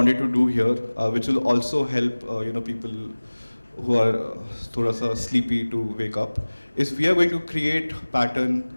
to do here, which will also help people who are thoda sa sleepy to wake up, is we are going to create pattern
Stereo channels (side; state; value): both; inverted; correlation -1.00